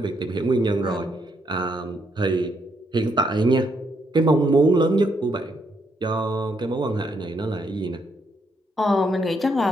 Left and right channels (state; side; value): normal; both; correlation 0.75